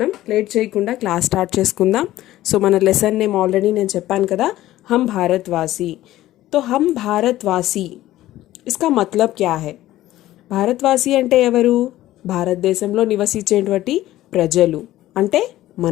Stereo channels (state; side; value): quieter; right; 15.0 dB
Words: లేట్ చేయకుండా క్లాస్ స్టార్ట్ చేసుకుందాం. సో మన లెసన్ నేమ్ ఆల్రెడీ నేను చెప్పాను కదా, हम भारतवासी. तो हम भारतवासी इसका मतलब क्या है? భారతవాసి అంటే ఎవరు? భారతదేశంలో నివసించేటువంటి ప్రజలు అంటే